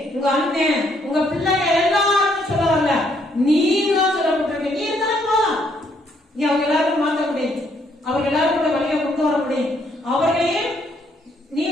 உங்க அண்ணன், உங்க பிள்ளைங்க எல்லாரும் சொல்ல வரல, நீங்க சொல்லப்பட்டிருக்க. நீ இருந்தாலும் நீ அவங்க எல்லாரும் மாற்ற முடியும், அவங்க எல்லாரும் கூட வழியை கொண்டு வர முடியும். அவர்களையும் நீ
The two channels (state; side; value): normal; both; correlation 0.70